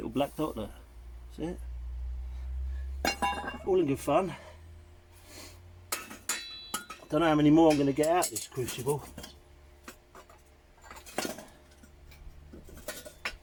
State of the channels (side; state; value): both; identical; correlation 1.00